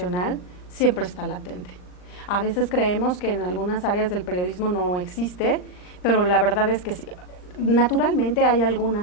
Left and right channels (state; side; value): late; right; 39 ms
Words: siempre está latente. A veces creemos que en algunas áreas del periodismo no existe, pero la verdad es que sí. Naturalmente hay